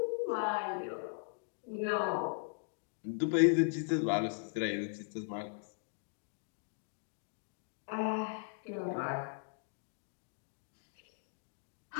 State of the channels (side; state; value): right; silent; digital silence